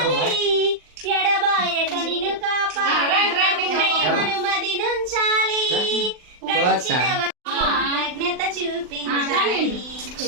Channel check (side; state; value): left; late; 39 ms